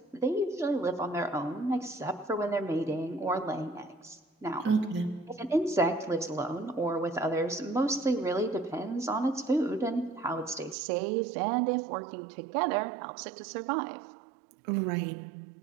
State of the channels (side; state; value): left; drops out; at 10.8 s